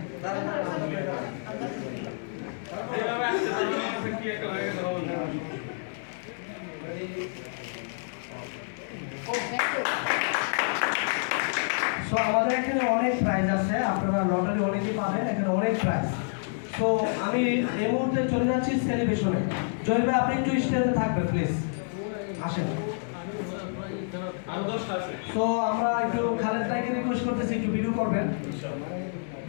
আমাদের এখানে অনেক প্রাইজ আছে, আপনারা লটারি অনেকেই পাবেন, এখানে অনেক প্রাইজ। তো আমি এই মুহূর্তে চলে যাচ্ছি সেলিব্রেশনে। জয় ভাই আপনি একটু স্টেজে থাকবেন প্লিজ, আসেন। তো আমরা একটু খালেদ ভাইকে রিকোয়েস্ট করতেছি একটু ভিডিও করবেন,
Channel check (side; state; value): right; silent; 59 dB below the other